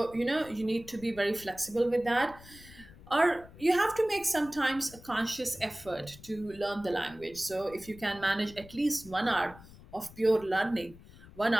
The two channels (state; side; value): noise; left; rumble, 20 dB below the sound